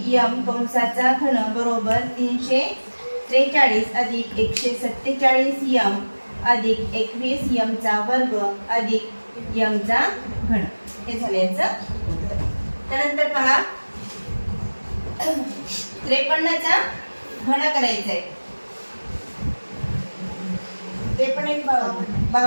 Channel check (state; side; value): inverted; both; correlation -1.00